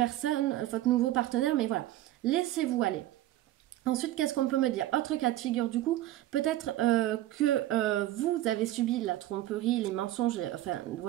votre nouveau partenaire, mais voilà, laissez-vous aller. Ensuite, qu'est-ce qu'on peut me dire? Autre cas de figure du coup, peut-être que vous avez subi la tromperie, les mensonges, enfin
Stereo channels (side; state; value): left; quieter; 14.7 dB